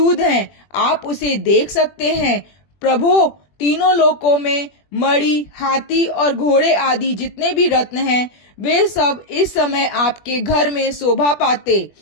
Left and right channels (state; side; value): late; right; 21 ms